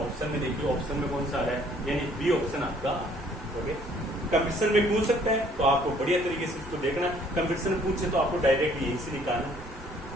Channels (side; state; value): both; normal; correlation 0.60